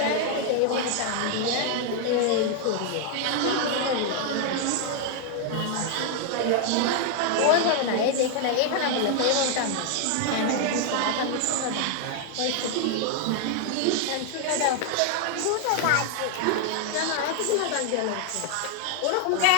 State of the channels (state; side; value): different; both; correlation 0.00